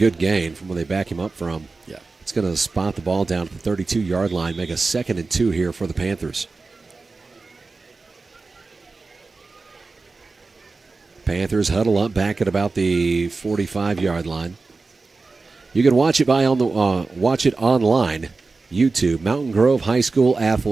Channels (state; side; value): quieter; left; 3.9 dB